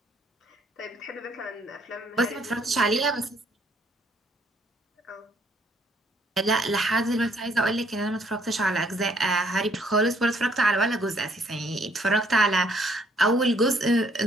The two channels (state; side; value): normal; both; correlation 0.65